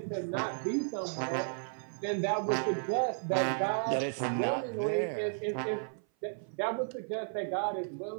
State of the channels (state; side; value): silent; left; 55 dB below the other